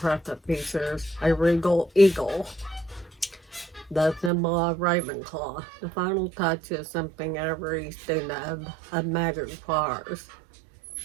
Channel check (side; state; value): left; drops out; at 4.3 s